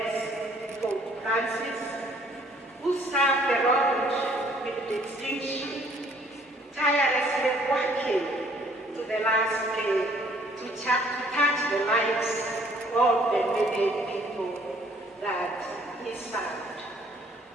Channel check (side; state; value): both; normal; correlation 0.60